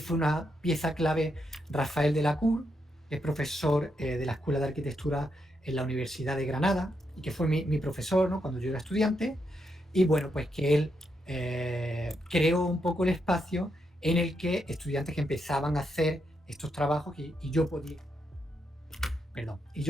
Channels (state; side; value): normal; both; correlation 0.81